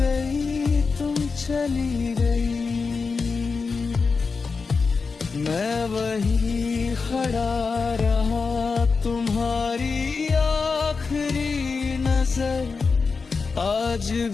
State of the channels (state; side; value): quieter; right; 4.7 dB